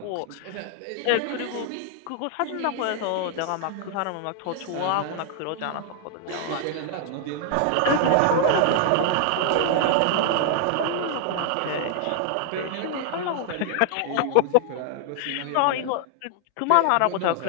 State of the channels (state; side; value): different; both; correlation 0.00